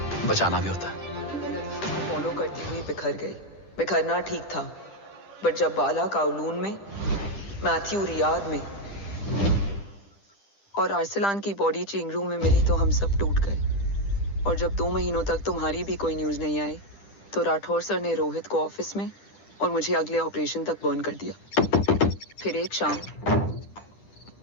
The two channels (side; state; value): right; late; 10 ms